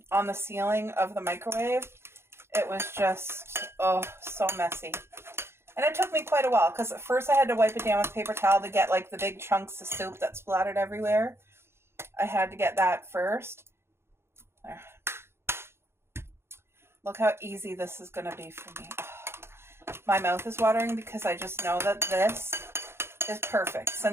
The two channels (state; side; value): late; left; 0.12 ms